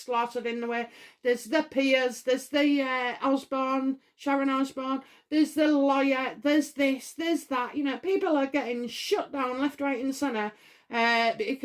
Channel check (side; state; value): both; identical; correlation 1.00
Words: in the way. There's the peers, there's the Sharon Osbourne, there's the lawyer, there's this, there's that. People are getting shut down left, right and centre